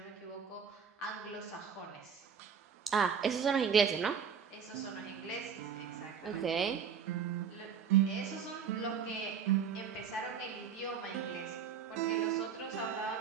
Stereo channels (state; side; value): quieter; left; 7.1 dB